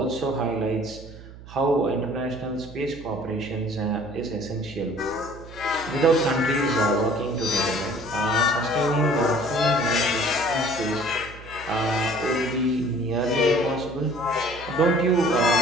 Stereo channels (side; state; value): right; noise; hum, 17 dB below the sound